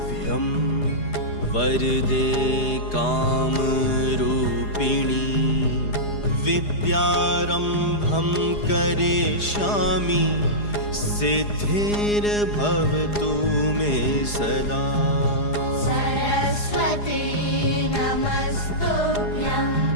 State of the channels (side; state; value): right; late; 4.8 ms